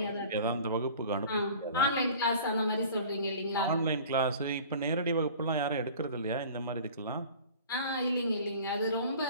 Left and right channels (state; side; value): inverted; both; correlation -0.43